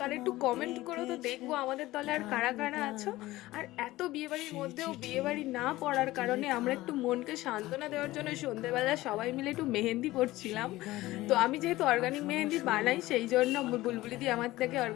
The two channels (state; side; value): quieter; right; 17.7 dB